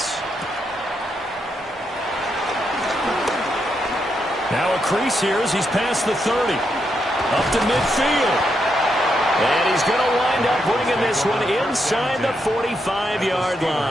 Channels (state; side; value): normal; both; correlation 0.81